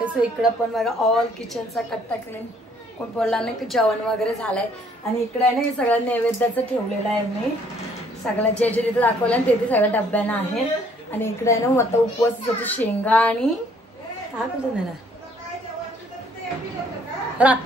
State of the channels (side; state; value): both; normal; correlation 0.62